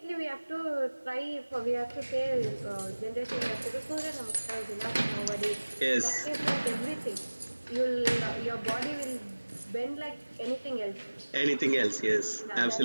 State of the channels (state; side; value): inverted; both; correlation -1.00